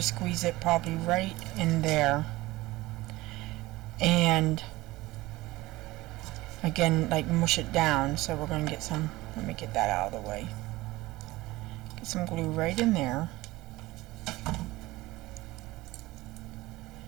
squeeze it probably right in there, and again like mush it down. So we're going to get some, let me get that out of the way, get some glue right in there,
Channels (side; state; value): left; quieter; 19.1 dB